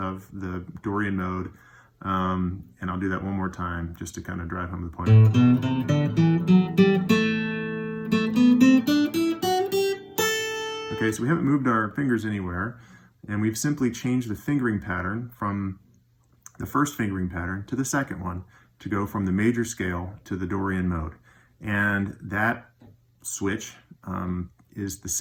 the Dorian mode. And I'll do that one more time just to kind of drive home the point. Okay, so we haven't moved our fingers anywhere, and we've simply changed the fingering pattern from the first fingering pattern to the second one to go from the major scale to the Dorian mode. And that switch is the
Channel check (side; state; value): both; identical; correlation 1.00